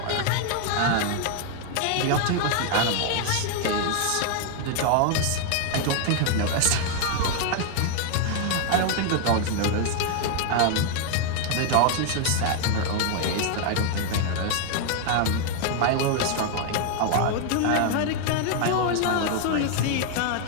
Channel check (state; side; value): different; both; correlation 0.00